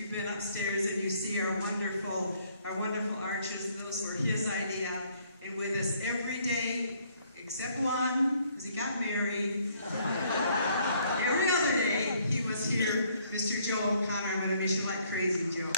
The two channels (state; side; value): inverted; both; correlation -0.65